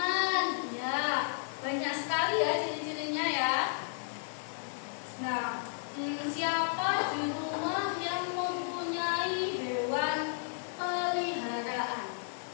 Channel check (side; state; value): right; silent; digital silence